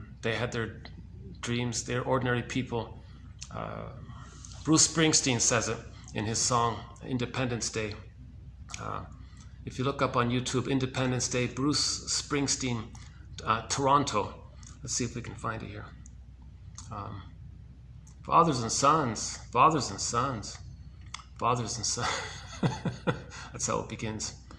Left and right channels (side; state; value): both; identical; correlation 1.00